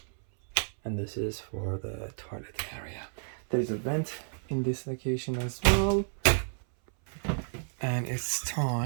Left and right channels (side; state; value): left; silent; 57 dB below the other